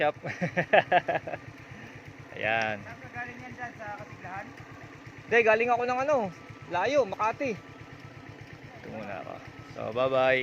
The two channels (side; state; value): both; identical; correlation 1.00